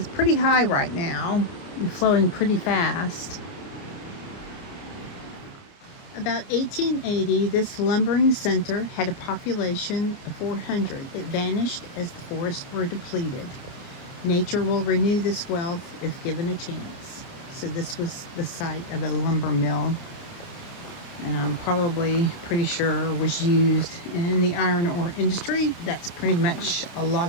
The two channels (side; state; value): right; late; 29 ms